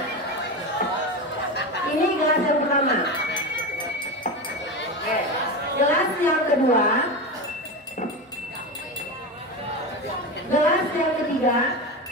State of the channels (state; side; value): normal; both; correlation 0.20